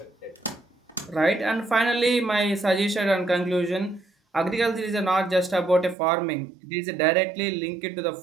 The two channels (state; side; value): drops out; left; at 6.0 s